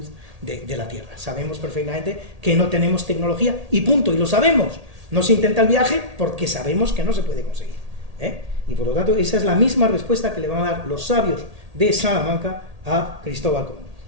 de la Tierra. Sabemos perfectamente que no tenemos tecnología y punto, y lo sabemos. No se intenta el viaje porque sabemos que no se puede conseguir. Y por lo tanto, esa es la misma respuesta que le van a dar los sabios de Salamanca a Cristóbal Colón.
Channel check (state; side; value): late; left; 1.8 ms